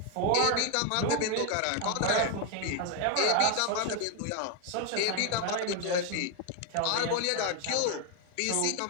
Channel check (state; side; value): different; both; correlation 0.01